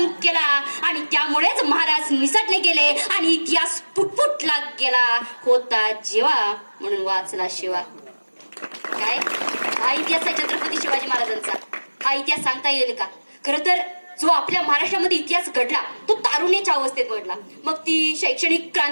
केला आणि त्यामुळेच महाराज निसटले गेले आणि इतिहास फुटफुटला गेला. होता जेवा म्हणून वाचला शिवा. काय हा इतिहास आहे छत्रपती शिवाजी महाराजांचा. हा इतिहास सांगता येईल का? खरं तर जो आपल्या महाराष्ट्रामध्ये इतिहास घडला तो तारुण्याच्या अवस्थेत घडला. मग ती शैक्षणिक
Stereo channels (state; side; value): inverted; both; correlation -1.00